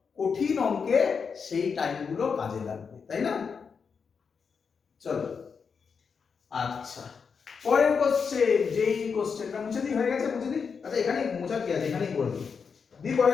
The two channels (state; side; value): quieter; right; 5.9 dB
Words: কঠিন অঙ্কে সেই টাইমগুলো কাজে লাগবে, তাই না? চলো আচ্ছা, পরের কোশ্চেন, যেই কোশ্চেনটা মুছে দিই, হয়ে গেছে মুছে দিই। আচ্ছা এখানেই মোছা কি আছে, এখানেই করে দিই।